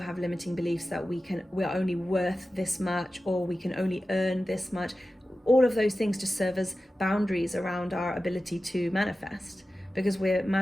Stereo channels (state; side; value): normal; both; correlation 0.94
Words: have limiting beliefs that we're only worth this much, or we can only earn this much, all of those things just serve as boundaries around our ability to manifest, because we're